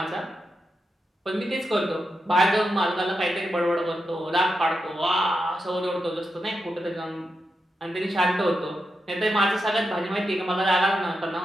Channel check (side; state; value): both; normal; correlation 0.87